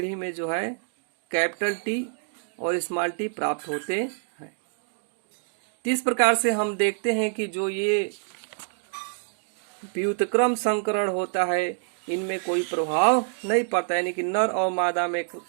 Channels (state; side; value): silent; left; digital silence